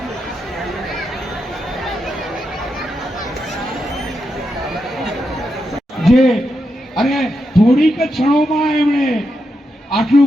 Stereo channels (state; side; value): normal; both; correlation 0.85